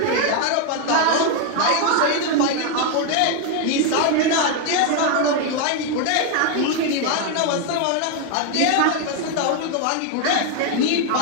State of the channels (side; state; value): both; different; correlation 0.01